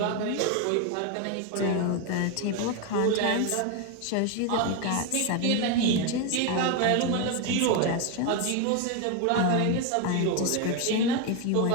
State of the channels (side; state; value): both; different; correlation 0.02